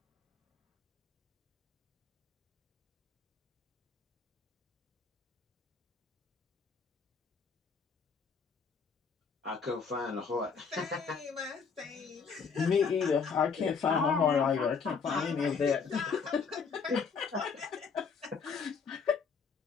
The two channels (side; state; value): right; quieter; 5.6 dB